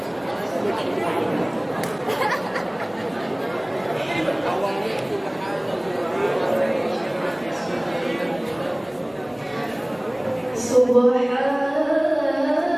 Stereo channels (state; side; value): noise; right; hum, 29 dB below the sound